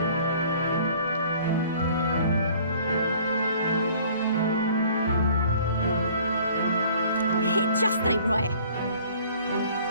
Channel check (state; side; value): inverted; both; correlation -0.53